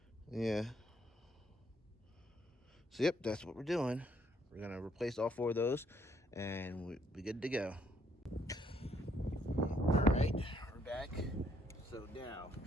Yeah. So yep, that's what we're doing. We're gonna replace all 4 of those and we'll be good to go. All right, we're back. So now,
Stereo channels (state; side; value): normal; both; correlation 0.69